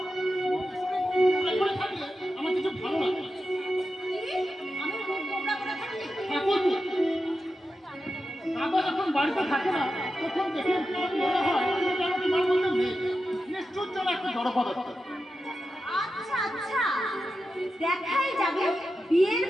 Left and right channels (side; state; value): both; normal; correlation 0.90